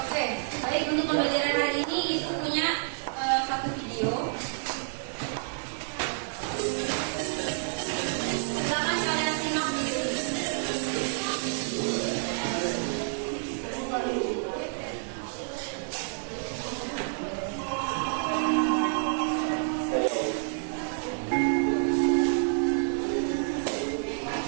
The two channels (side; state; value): left; silent; digital silence